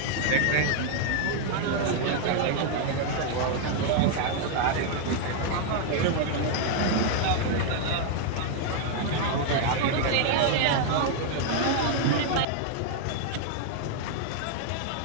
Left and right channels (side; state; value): both; different; correlation 0.00